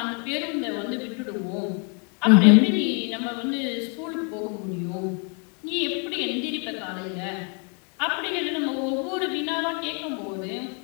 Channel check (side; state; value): right; quieter; 38.3 dB